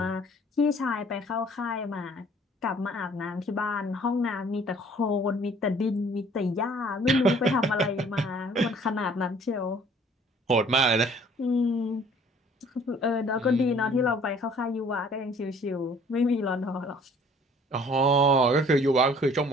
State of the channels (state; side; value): normal; both; correlation 0.55